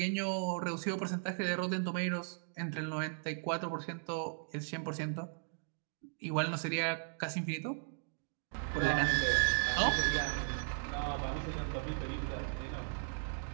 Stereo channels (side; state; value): left; silent; digital silence